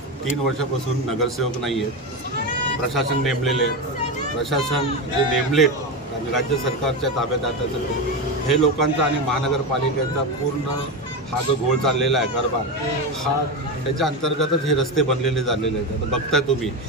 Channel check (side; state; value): both; normal; correlation 0.16